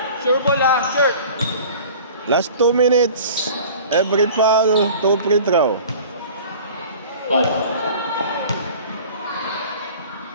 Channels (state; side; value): inverted; both; correlation -0.43